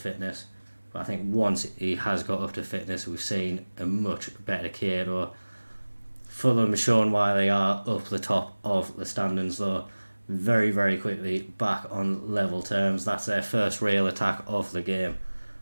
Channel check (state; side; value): inverted; both; correlation -1.00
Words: But I think once he has got up to fitness, we've seen a much better Kieto. Fulham has shown why they are up the top of the standings though. Very, very quickly back on level terms. That's their first real attack of the game.